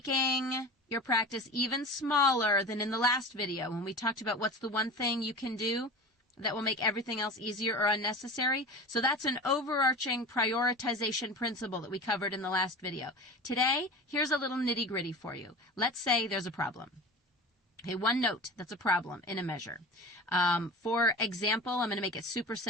your practice even smaller than in the last video when we talked about what's the one thing you can do that will make everything else easier or unnecessary. So that's an overarching prioritization principle that we covered in the last video. Today, here's a little nitty-gritty for you. Let's say there's a problem. Okay, one note that's a problem in a measure. For example, I'm going to make it super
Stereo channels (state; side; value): normal; both; correlation 0.33